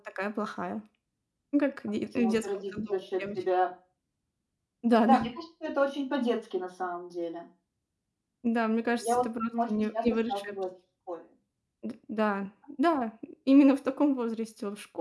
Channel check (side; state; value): both; identical; correlation 1.00